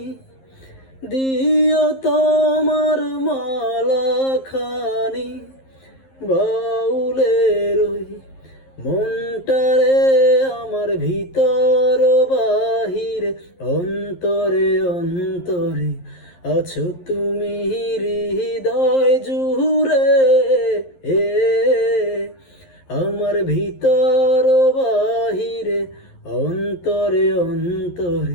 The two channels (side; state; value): right; late; 11 ms